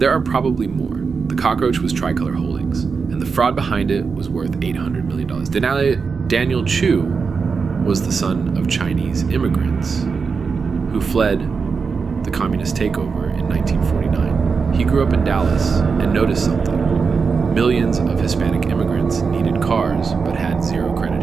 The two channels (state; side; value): quieter; left; 5.2 dB